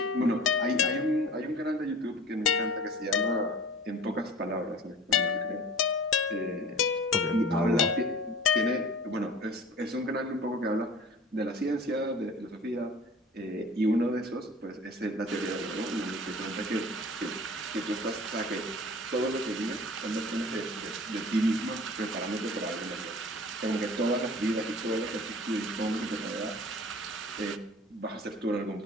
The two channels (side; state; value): both; normal; correlation 0.43